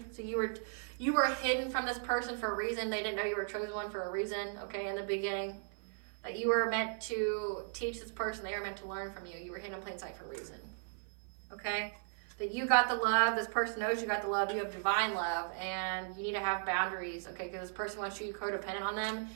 So you were hidden from this person for a reason. They didn't know you were chosen one for a reason, okay, in the beginning. That you were meant to teach this person. They were meant to learn from you. You were hidden in plain sight for a reason, okay? That you got the love. This person knows you got the love. You have divine love, and you need to have boundaries, okay? Because this person wants you codependent on them,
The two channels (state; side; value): silent; left; 53 dB below the other